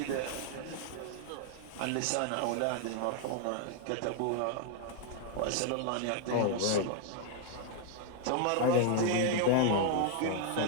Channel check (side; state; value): both; different; correlation 0.00